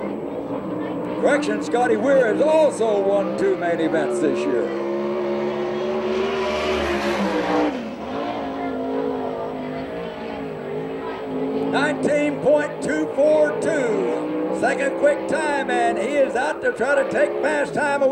Correction, Scotty Weir has also won 2 main events this year. .19.242, second quick time, and he is out to try to take fast time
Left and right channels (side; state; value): both; identical; correlation 1.00